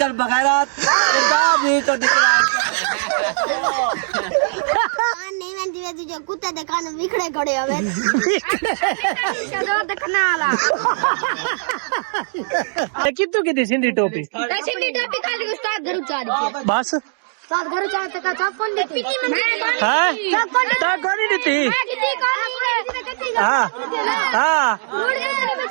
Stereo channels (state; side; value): silent; left; digital silence